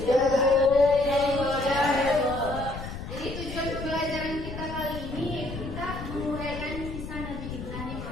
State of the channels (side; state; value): left; noise; rumble, 8 dB below the sound